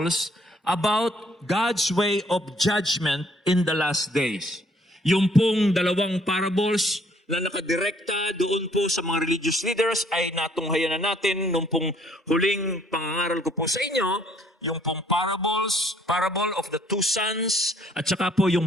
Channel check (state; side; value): normal; both; correlation 0.63